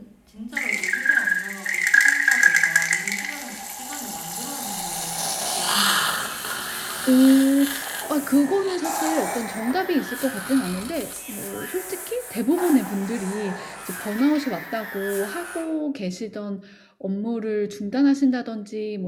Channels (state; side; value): identical; both; correlation 1.00